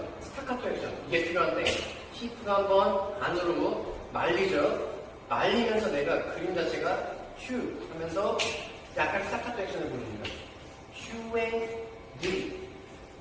스타카토 액션 이게 필요한데 히프가 한번 안으로 말리죠. 말리면서 내가 그림 자체가 휴 하면서 약간 스타카토 액션을 보여줍니다. 휴에 느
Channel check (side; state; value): both; identical; correlation 1.00